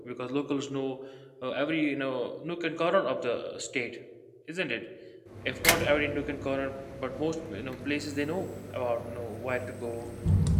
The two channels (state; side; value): identical; both; correlation 1.00